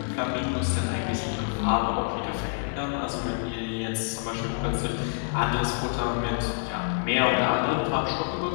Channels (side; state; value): right; silent; digital silence